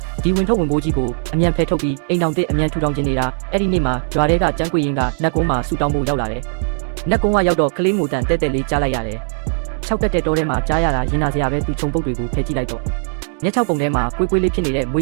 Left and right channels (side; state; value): left; silent; 67 dB below the other